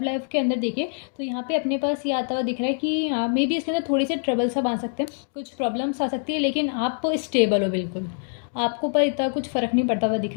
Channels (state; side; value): silent; right; 58 dB below the other